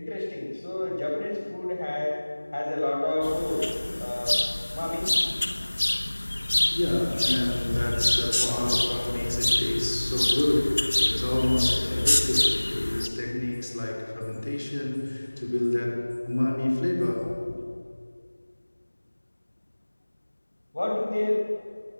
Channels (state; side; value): inverted; both; correlation -1.00